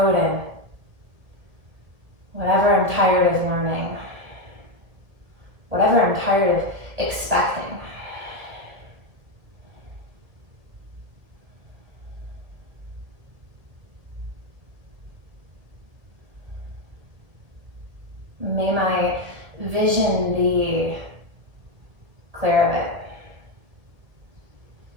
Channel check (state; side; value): late; left; 1.8 ms